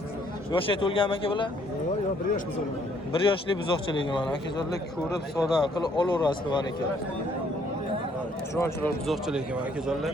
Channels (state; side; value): normal; both; correlation 0.65